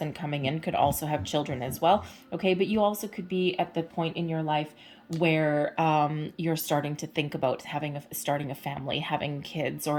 coming in could also have children as well, okay, but you also could be at the point in your life where you're starting to think about starting a family, having kids,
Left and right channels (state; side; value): identical; both; correlation 1.00